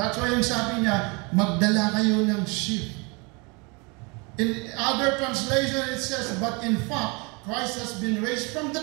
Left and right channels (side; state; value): left; quieter; 29.5 dB